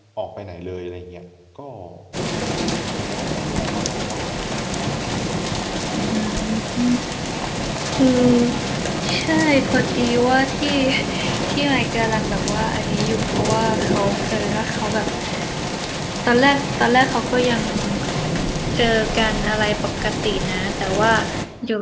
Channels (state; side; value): identical; both; correlation 1.00